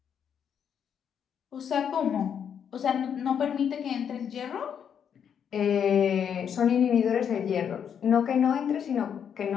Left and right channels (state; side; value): quieter; right; 8.0 dB